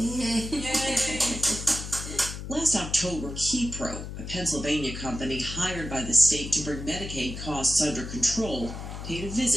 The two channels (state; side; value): noise; left; hum, 8 dB below the sound